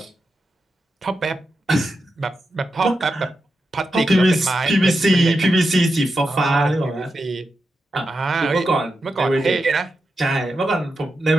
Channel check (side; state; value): both; normal; correlation 0.88